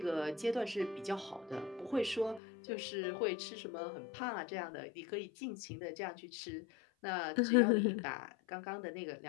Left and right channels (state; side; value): drops out; right; at 2.4 s